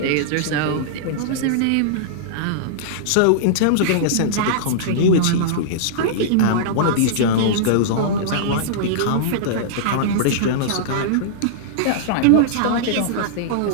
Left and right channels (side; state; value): both; different; correlation -0.02